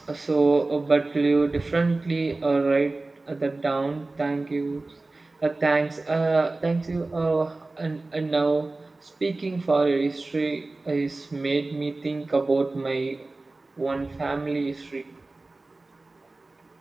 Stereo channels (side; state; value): left; quieter; 3.2 dB